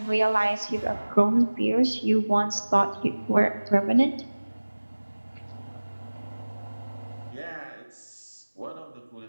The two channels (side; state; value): both; inverted; correlation -1.00